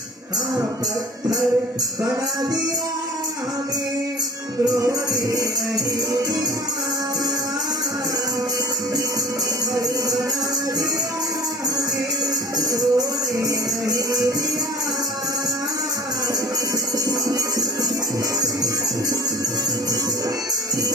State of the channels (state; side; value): normal; both; correlation 0.42